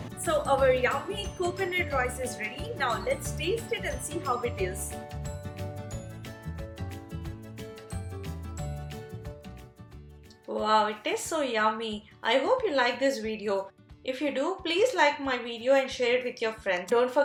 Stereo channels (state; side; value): identical; both; correlation 1.00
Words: So our yummy coconut rice is ready. Now let's taste it and see how it is. Wow, it tastes so yummy. I hope you like this video. If you do, please like my video and share it with your friends. Don't